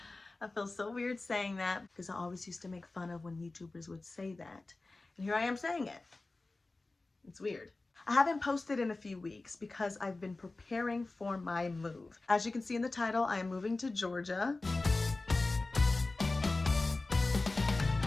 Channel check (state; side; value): quieter; right; 3.3 dB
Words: I feel so weird saying that because I always used to make fun of when YouTubers would say that. And here I am saying it. It's weird. I haven't posted in a few weeks because I've been preparing for my move. As you can see in the title, I am moving to Georgia.